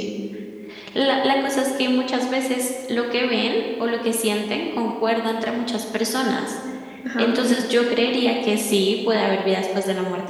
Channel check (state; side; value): identical; both; correlation 1.00